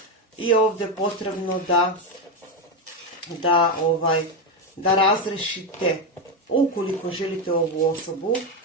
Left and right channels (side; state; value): both; normal; correlation 0.10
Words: i ovdje je potrebno da razrešite. Ukoliko želite ovu osobu,